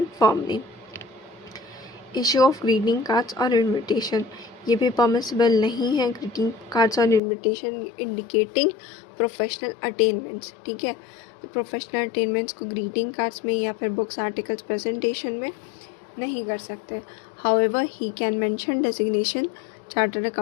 firm name. Issue of greeting cards और invitation, ये भी permissible नहीं है। ग्रीटिंग कार्ड्स और इनविटेशन इंडिकेटिंग प्रोफेशनल अटेनमेंट्स, ठीक है। तो प्रोफेशनल अटेनमेंट्स को ग्रीटिंग कार्ड्स में या फिर बुक्स आर्टिकल्स प्रेजेंटेशन में नहीं कर सकते। However he can mention designation, chartered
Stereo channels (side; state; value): right; drops out; at 7.2 s